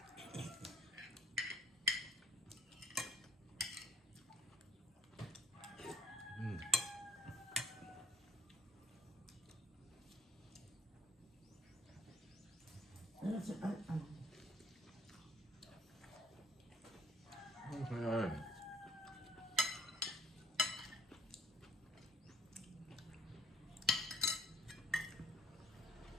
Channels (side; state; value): both; normal; correlation 0.63